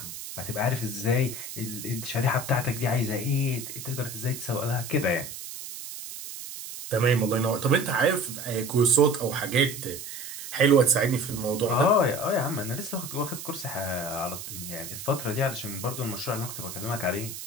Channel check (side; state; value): right; noise; hiss, 10 dB below the sound